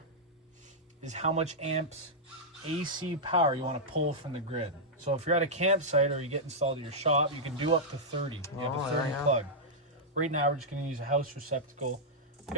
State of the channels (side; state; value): both; normal; correlation -0.07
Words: is how much amps AC power you want to pull from the grid. So if you're at a campsite or you get installed at your shop, you can do up to 30. You have a 30 plug. Right now we're just going to use a house receptacle. We